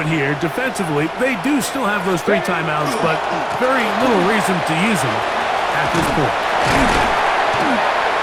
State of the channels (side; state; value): both; identical; correlation 1.00